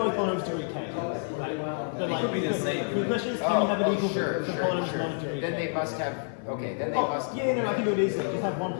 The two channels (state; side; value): silent; right; 57 dB below the other